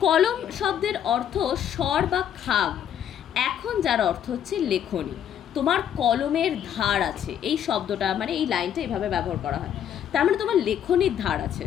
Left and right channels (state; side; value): quieter; right; 9.6 dB